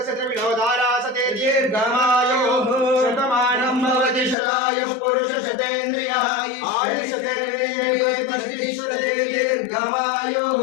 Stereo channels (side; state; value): right; drops out; at 4.4 s